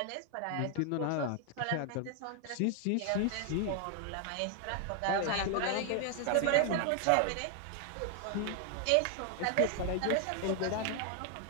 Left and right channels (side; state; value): both; different; correlation 0.00